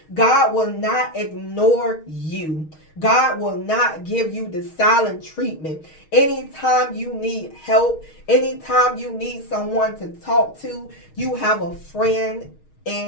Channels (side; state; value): right; late; 6.4 ms